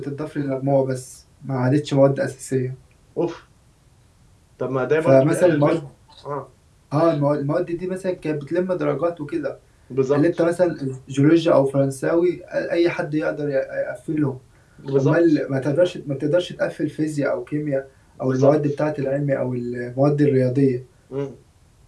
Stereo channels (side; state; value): both; identical; correlation 1.00